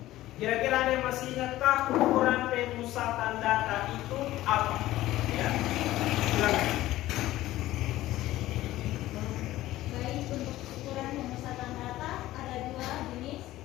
Kira-kira ada yang masih ingatkah ukuran pemusatan data itu apa? Ya, silakan. Baik, untuk ukuran pemusatan data ada dua jenis,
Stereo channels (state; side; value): quieter; right; 15.6 dB